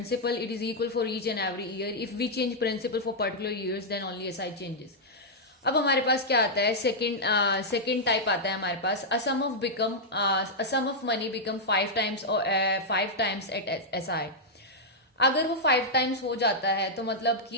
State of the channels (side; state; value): both; normal; correlation -0.05